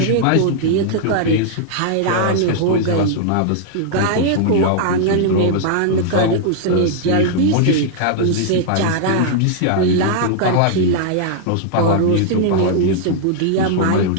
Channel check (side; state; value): both; different; correlation -0.01